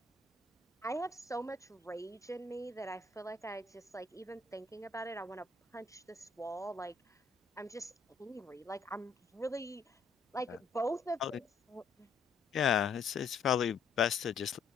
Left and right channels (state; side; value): quieter; right; 4.6 dB